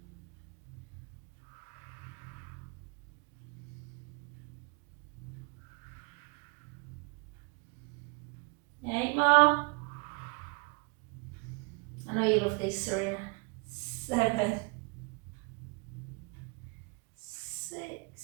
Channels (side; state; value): left; quieter; 33.4 dB